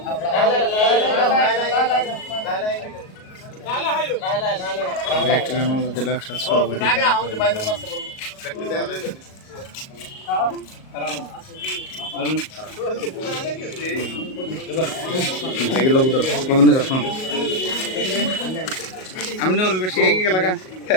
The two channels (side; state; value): right; late; 38 ms